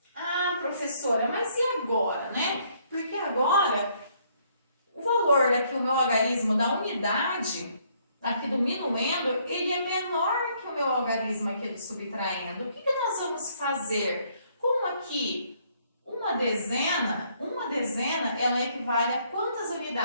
Ah, professora, mas e agora, né? Porque agora, o valor daqui, o meu algarismo da unidade, aqui do minuendo, ele é menor que o meu algarismo aqui do subtraindo. O que nós vamos fazer? Como aqui, uma dezena, ela equivale a quantas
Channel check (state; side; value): inverted; both; correlation -0.67